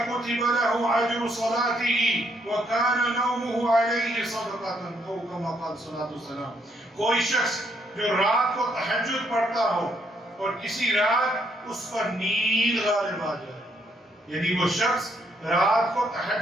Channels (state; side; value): normal; both; correlation 0.72